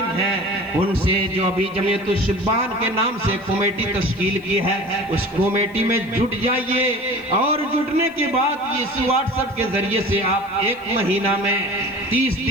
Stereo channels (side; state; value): left; noise; hiss, 30 dB below the sound